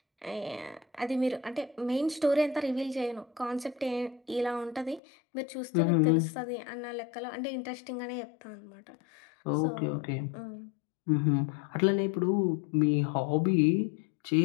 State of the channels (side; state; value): right; drops out; at 5.0 s